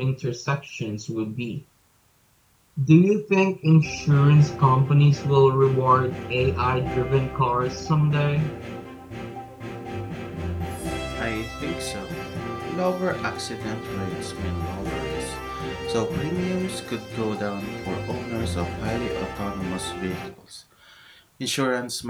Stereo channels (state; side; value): identical; both; correlation 1.00